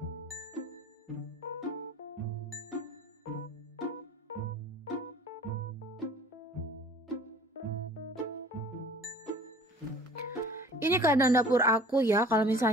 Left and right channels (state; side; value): normal; both; correlation 0.47